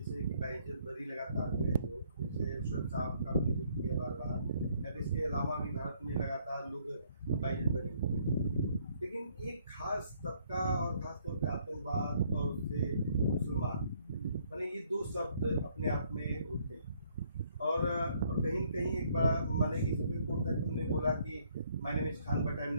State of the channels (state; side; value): inverted; both; correlation -0.66